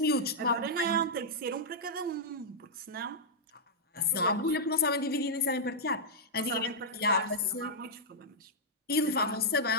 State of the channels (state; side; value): normal; both; correlation -0.08